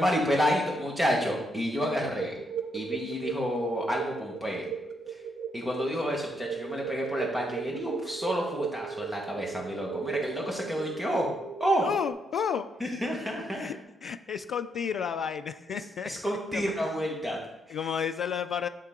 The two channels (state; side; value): normal; both; correlation 0.76